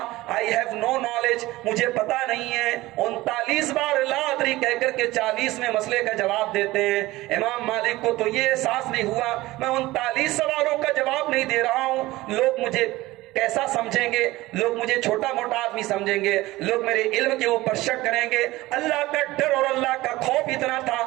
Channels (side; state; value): left; quieter; 18.4 dB